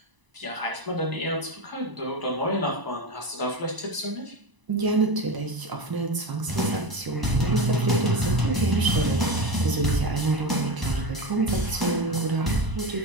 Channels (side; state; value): left; late; 1.0 ms